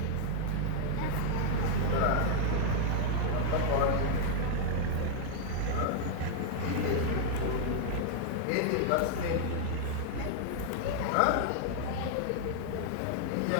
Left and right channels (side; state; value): both; different; correlation 0.00